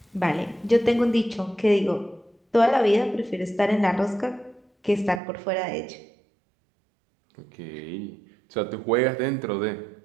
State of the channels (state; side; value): drops out; left; at 5.2 s